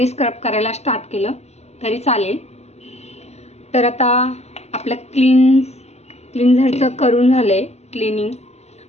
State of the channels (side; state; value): right; late; 0.31 ms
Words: स्क्रब करायला स्टार्ट केलं तरी चालेल. तर आता आपलं क्लिन्झरचं करून झाले. क्लिनिंग.